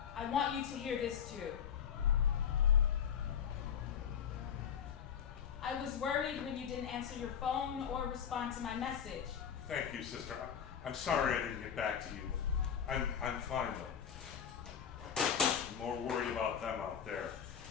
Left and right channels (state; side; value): quieter; right; 8.0 dB